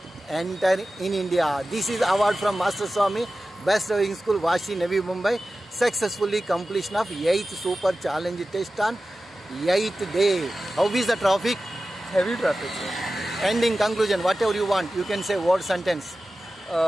enter in India. This is award from Master Swami, Best Driving School, Vashi, Navi Mumbai. Successfully completion of 8th super challenge test on 8th day. How is the traffic? Heavy traffic, sir. Ending conclusion, whatever you want, you can say word sentence.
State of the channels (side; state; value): both; normal; correlation 0.95